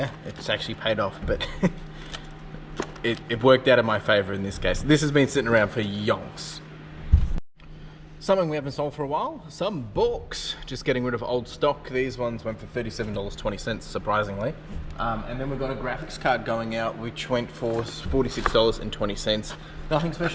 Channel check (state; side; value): identical; both; correlation 1.00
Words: it's actually paid off, but it worked out in my favor in this case. This has been sitting around for yonks. Something we haven't sold for a while, some books. Just getting rid of old stock. These ones went for $37.20, surprisingly. And then we've got a graphics card going out, which went for $46.20. Nothing